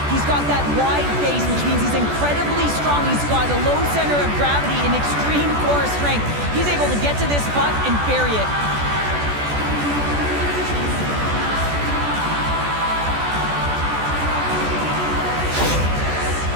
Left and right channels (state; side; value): late; left; 14 ms